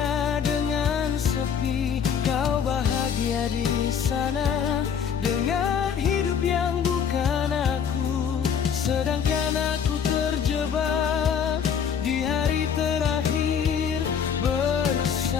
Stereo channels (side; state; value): right; quieter; 7.5 dB